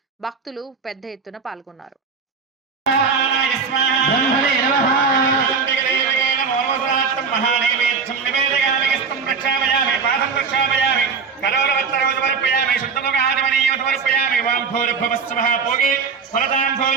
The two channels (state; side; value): quieter; left; 5.4 dB